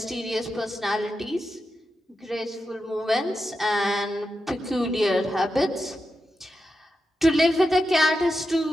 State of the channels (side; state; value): both; normal; correlation 0.89